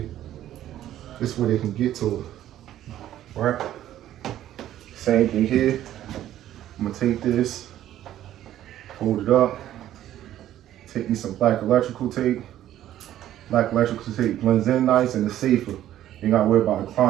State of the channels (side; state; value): left; quieter; 12.4 dB